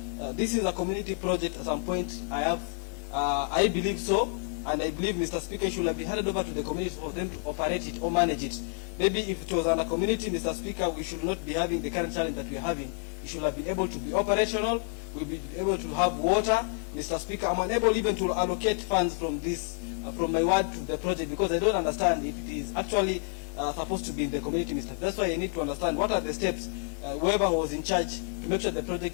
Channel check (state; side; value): silent; right; 55 dB below the other